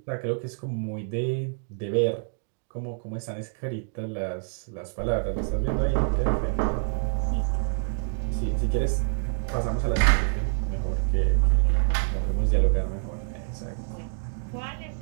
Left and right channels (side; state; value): left; silent; digital silence